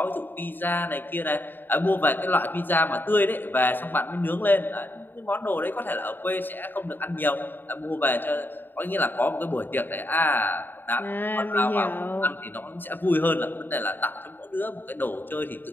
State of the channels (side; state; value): right; late; 0.093 ms